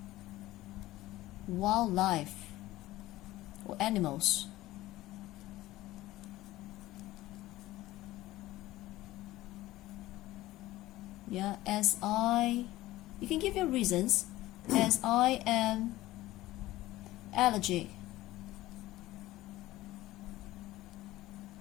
wildlife or animals. Yeah, you can give your reasons, as I am allergic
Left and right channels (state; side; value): quieter; right; 16.7 dB